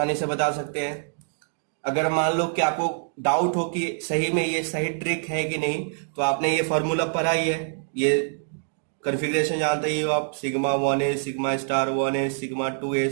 से बता सकते हैं। अगर मान लो कि आपको डाउट हो कि सही में ये सही ट्रिक है कि नहीं, तो आपने ये फॉर्मूला पढ़ा ही है, ये कॉन्फ़िगरेशन जानते ही हो आप, sigma 1s sigma star 1s sigma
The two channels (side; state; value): left; silent; digital silence